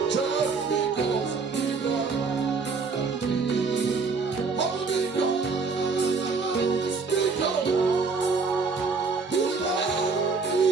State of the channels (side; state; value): left; quieter; 4.6 dB